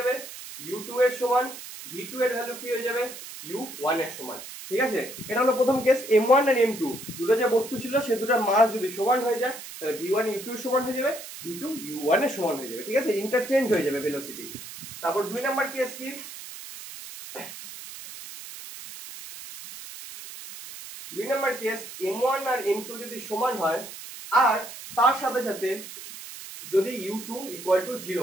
u2 এর সমান, v2 এর ভ্যালু কি হয়ে যাবে u1 এর সমান, ঠিক আছে। এটা হলো প্রথম কেস। m1 আর m2 দুটো যে বস্তু ছিল সে দুটোর মাস যদি সমান হয়ে যায় তাহলে v1 u2 এর সমান হয়ে যাবে, v2 u1 এর সমান হয়ে যাবে, ঠিক আছে, ইন্টারচেঞ্জ হয়ে যাবে ভেলোসিটি। তারপর 2 নাম্বার কেস কি, 2 নাম্বার কেস m1 আর m2 যদি সমান হয় আর তার সাথে সাথে যদি u2 0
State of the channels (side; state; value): right; noise; hiss, 12 dB below the sound